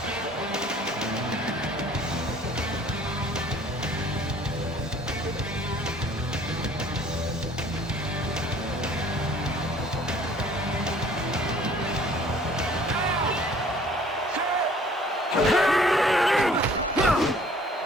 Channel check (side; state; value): both; normal; correlation 0.54